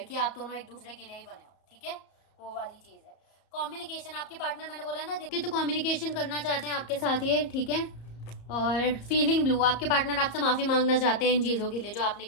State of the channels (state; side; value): late; right; 34 ms